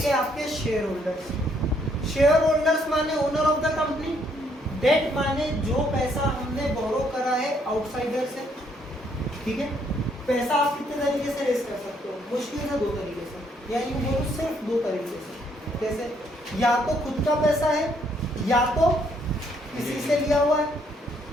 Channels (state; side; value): normal; both; correlation 0.69